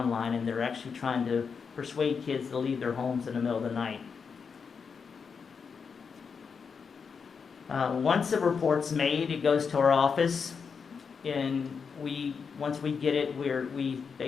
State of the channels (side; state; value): right; quieter; 5.9 dB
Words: and they're actually trying to persuade kids to leave their homes in the middle of the night. Once a report's made, it goes to our office, and once we get it, we